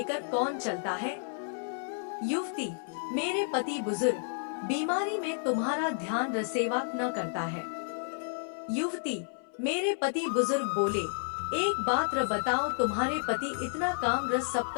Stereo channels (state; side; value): silent; right; 56 dB below the other